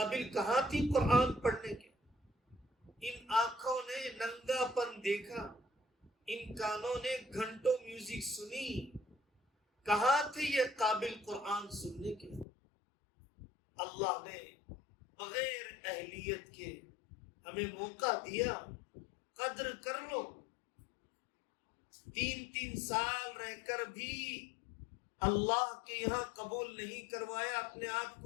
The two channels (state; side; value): drops out; right; at 12.5 s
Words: کہاں تھی قرآن پڑھنے کے؟ ان آنکھوں نے ننگا پن دیکھا، ان کانوں نے گھنٹوں میوزک سنی، کہاں تھے یہ قابل قرآن سننے کے؟ اللہ نے بغیر اہلیت کے ہمیں موقع دیا، قدر کر لو۔ 3 سال رہ کر بھی اللہ کے یہاں قبول نہیں کروایا اپنے آپ